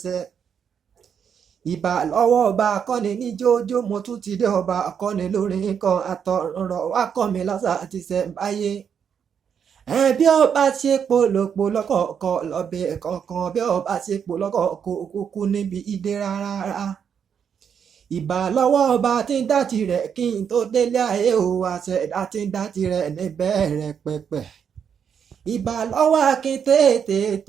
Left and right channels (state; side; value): quieter; left; 7.5 dB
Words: ṣẹ. Ìbà lọ́wọ́ ọba akọ́ni ní jójó mo tún ti dé ọba akọ́ni lórin kan àtọ̀rọ̀ wá kọ́ mi lọ́sà àti ṣẹ̀ǹbáyé. Bí ọba ṣe polòpò lọ́kọ̀ọ̀kọ̀ lọ́bẹ̀ kọ̀ọ̀kan bí ọba ṣe polọ́kọ̀ọ̀kọ̀ kúkú níbi ìdè rárá. Ìbà lọ́wọ́ ọba tí ń dá tirẹ̀ kí n tó délé ayé o àṣẹ̀dá tí ń dá tirẹ̀ níbẹ̀rẹ̀ pẹ̀pẹ̀. Ìbà lọ́wọ́ akin